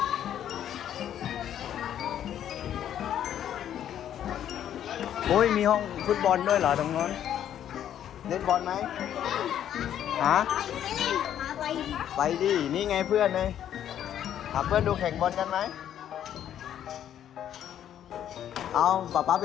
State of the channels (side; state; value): right; quieter; 10.4 dB